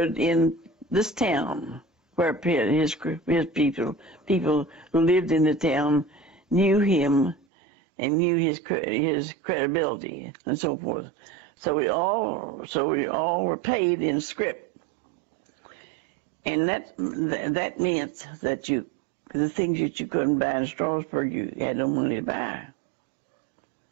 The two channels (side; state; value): left; drops out; at 7.5 s